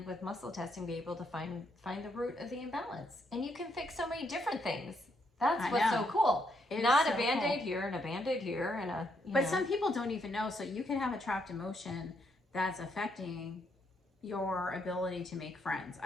with muscle testing be able to find the root of the imbalance? And you can fix so many different things. That's what's so cool. Not a Band-Aid here and a Band-Aid here and a, but some people don't even know. So you can have a trapped emotion that's affecting your ability to make friends.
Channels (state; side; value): normal; both; correlation 0.75